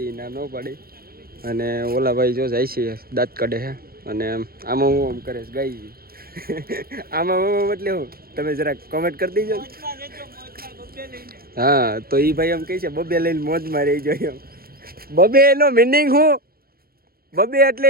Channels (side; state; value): left; late; 0.44 ms